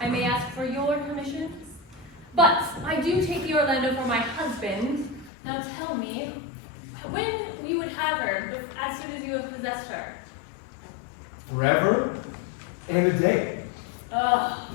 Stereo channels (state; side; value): drops out; right; at 5.3 s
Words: may ask for your permission, but I do take thee, Orlando, for my husband. Now tell me, when we would have her, as soon as you have possessed her? Forever and a day. Ugh.